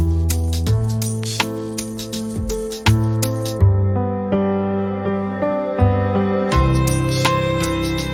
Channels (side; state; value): both; identical; correlation 1.00